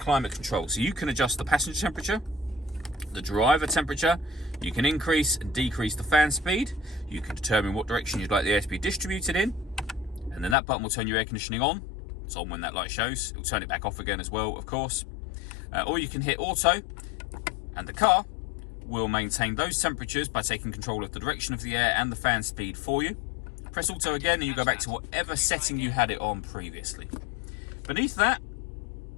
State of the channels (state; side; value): drops out; right; at 10.6 s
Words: control. So you can adjust the passenger temperature, the driver temperature, you can increase and decrease the fan speed, you can determine what direction you'd like the air to be distributed in, and then that button will turn your air conditioning on. It's on when that light shows. It'll turn it back off again as well, of course. Or you can hit auto, and the car will maintain those temperatures by taking control of the direction of the air and the fan speed for you. Press auto again and you go back to whatever setting you had it on previously. Beneath that,